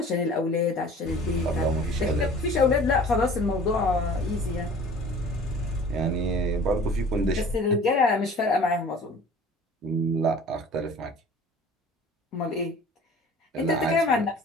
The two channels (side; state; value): both; normal; correlation 0.46